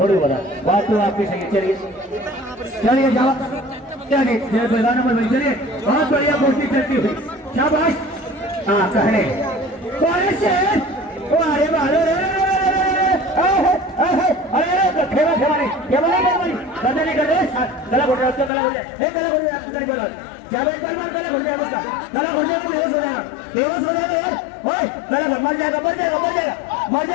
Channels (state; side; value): drops out; right; at 18.5 s